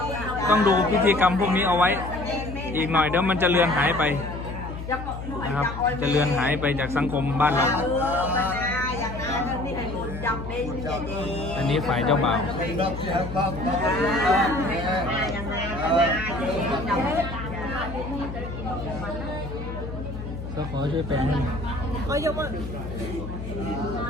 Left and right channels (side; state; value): left; noise; hum, 8 dB below the sound